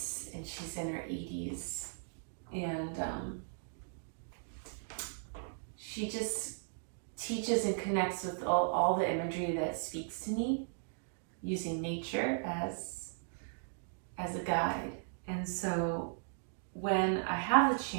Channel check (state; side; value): silent; left; digital silence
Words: and she's in her 80s. And she just teaches and connects with all the imagery that speaks to me, using nature as a guide. And so when I have the